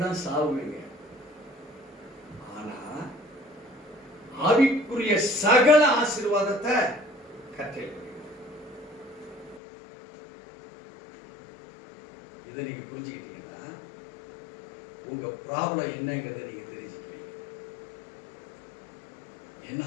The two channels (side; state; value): right; drops out; at 9.6 s